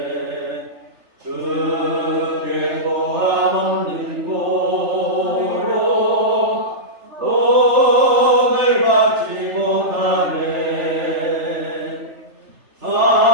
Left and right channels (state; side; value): late; left; 3.4 ms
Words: 주께 고함 없는 고로 옥을 받지 못하네